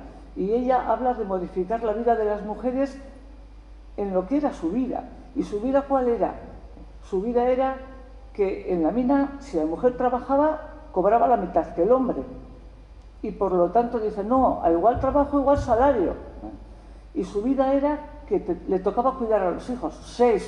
y ella habla de modificar la vida de las mujeres en lo que era su vida. ¿Y su vida cuál era? Su vida era que en la mina, si la mujer trabajaba, cobraba la mitad que el hombre. Y por lo tanto dice, no, a igual trabajo, igual salario. Y su vida era que le tocaba cuidar a los hijos.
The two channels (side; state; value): both; identical; correlation 1.00